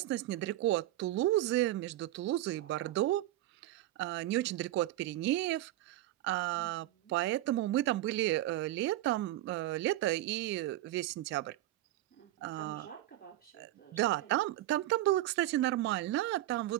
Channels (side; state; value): left; quieter; 15.2 dB